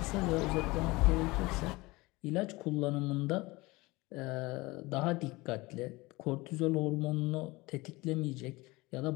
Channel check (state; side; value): quieter; right; 22.2 dB